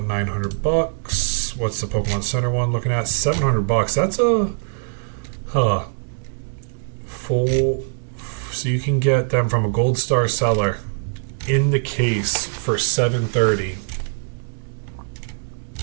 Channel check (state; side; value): silent; left; digital silence